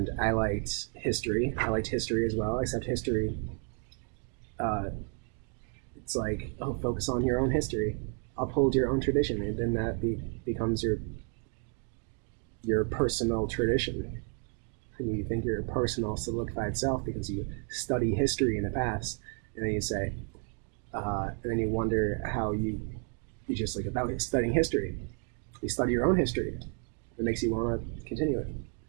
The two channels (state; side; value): quieter; left; 37.8 dB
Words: I liked history. I liked history as well. Except history, uh, it's like, oh, focus on your own history, uphold your own tradition, and then becomes your personal tradition. And you think you're a personal solidified self because you study history in the past, and then you say, and then you wonder how you just like about studying history. You study your own history. It makes you want to continue it,